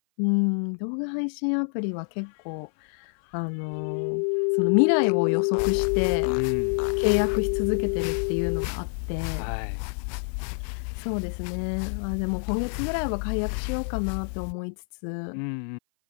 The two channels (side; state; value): right; silent; 56 dB below the other